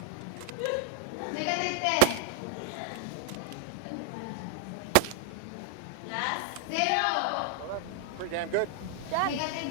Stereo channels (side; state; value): both; different; correlation 0.00